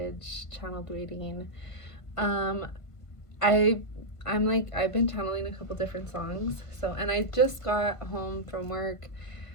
channeled reading. Um, I I've been channeling a couple different songs. And I just got home from work.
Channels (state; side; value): late; right; 1.5 ms